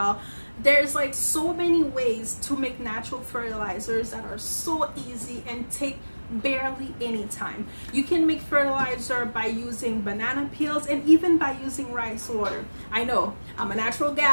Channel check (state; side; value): inverted; both; correlation -1.00